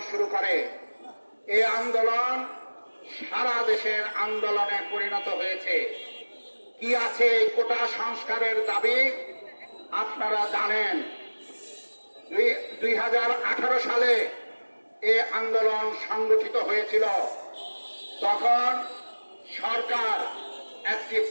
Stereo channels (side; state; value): both; inverted; correlation -1.00